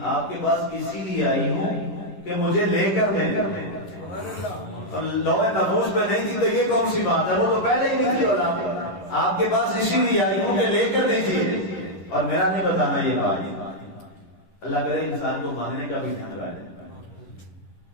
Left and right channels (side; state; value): right; late; 11 ms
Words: آپ کے پاس اسی لیے آئی ہوں کہ مجھے لے کر دیں۔ اور لوح محفوظ پہ نہیں تھی تو یہ کون سی بات ہے؟ وہ تو پہلے ہی نہیں تھی اولاد، آپ کے پاس اسی لیے آئی ہوں کہ لے کر دیجیے اور میرا نہیں بتانا یہ بات۔ اللہ کرے انسان کو مانگنے کا بھی ڈھنگ ہے۔